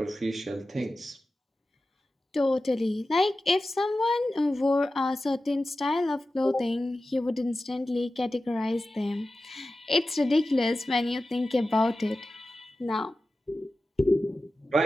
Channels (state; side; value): normal; both; correlation 0.94